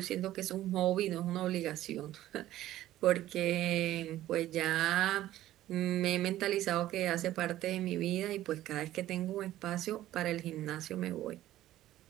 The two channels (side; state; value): left; quieter; 14.2 dB